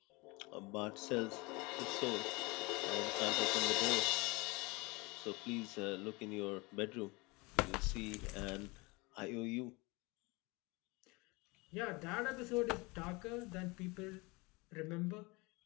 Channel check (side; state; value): right; quieter; 25.7 dB